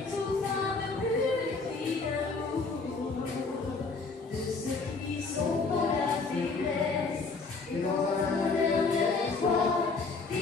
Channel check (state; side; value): quieter; right; 4.2 dB